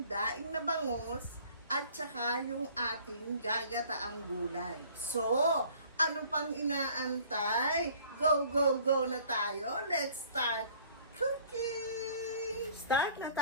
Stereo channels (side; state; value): both; inverted; correlation -0.53